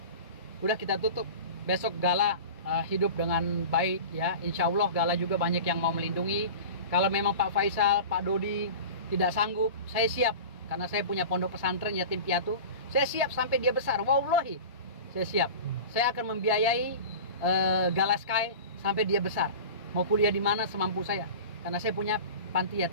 udah kita tutup. Besok Gala hidup dengan baik ya, insya Allah Gala juga banyak yang mau melindungi. Kalau memang Pak Faisal, Pak Dodi tidak sanggup, saya siap, karena saya punya pondok pesantren yatim piatu, saya siap sampai dia besar, wallahi saya siap, saya akan membiayai Gala Sky sampai dia besar, mau kuliah di mana semampu saya, karena saya punya panti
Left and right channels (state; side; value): inverted; both; correlation -0.35